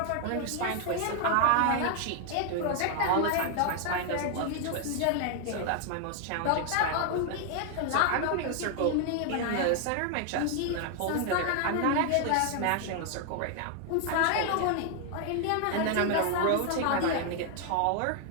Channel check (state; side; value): different; both; correlation 0.00